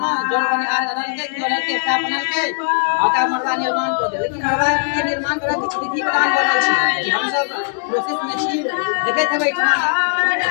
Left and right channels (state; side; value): silent; right; digital silence